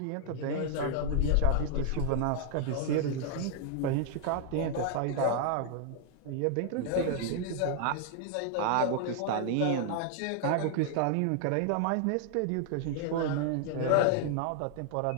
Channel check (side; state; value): both; different; correlation 0.00